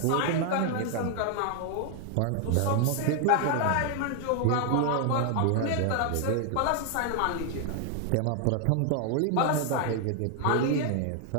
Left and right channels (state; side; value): different; both; correlation 0.00